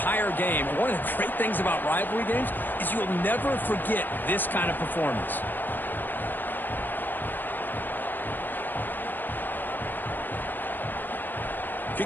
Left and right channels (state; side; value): late; right; 0.092 ms